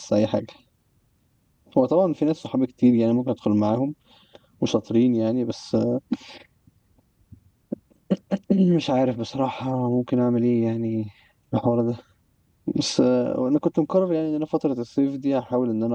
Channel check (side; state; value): both; identical; correlation 1.00